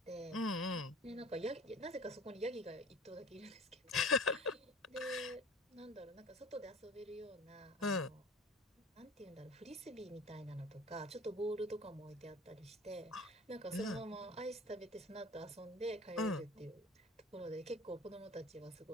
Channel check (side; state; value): both; normal; correlation 0.41